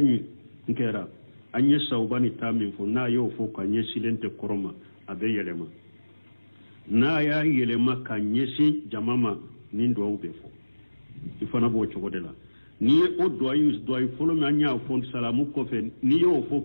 nkera anye saubani tamin fo na yo fo ka nye silente koroma abe yelema na ya yelema ka nyesi jamama nindo ube fo ifana bo chogodela ni o doyi folo me anya fo salamu ko fe ni yo fo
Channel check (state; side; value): inverted; both; correlation -1.00